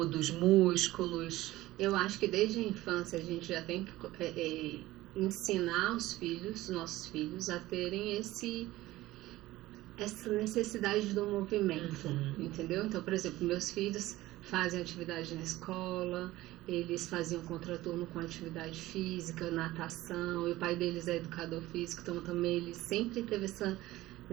dos músculos? Eu acho que desde a infância a gente já tem que ensinar os nossos filhos, a terem essa necessidade do movimento, entendeu? Então, por exemplo, meus filhos fazem atividade na escola, eles faziam contraturno com atividade física, natação, e o pai deles é educador físico, então também ele sempre teve essa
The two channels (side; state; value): left; quieter; 17.0 dB